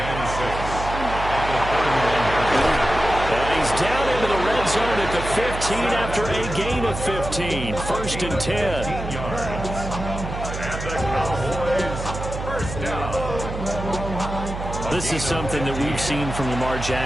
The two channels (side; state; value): right; noise; hum, 7 dB below the sound